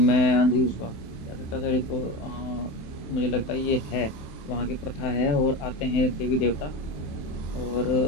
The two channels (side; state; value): right; late; 27 ms